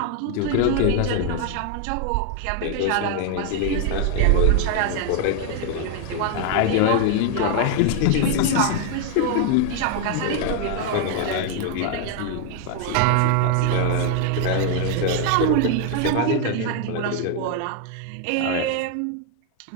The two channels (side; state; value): both; different; correlation 0.00